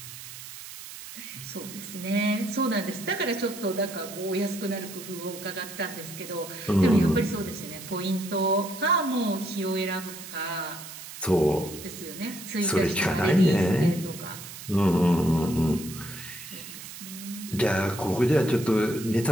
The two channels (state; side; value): noise; right; hiss, 13 dB below the sound